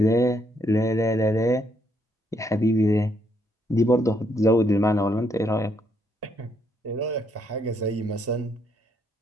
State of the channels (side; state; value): both; normal; correlation 0.74